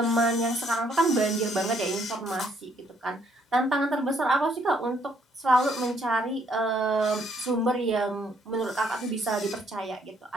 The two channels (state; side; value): normal; both; correlation 0.68